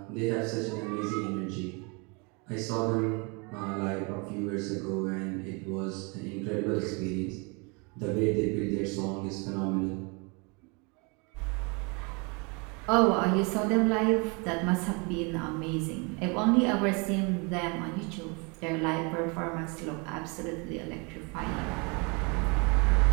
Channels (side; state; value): left; quieter; 31.2 dB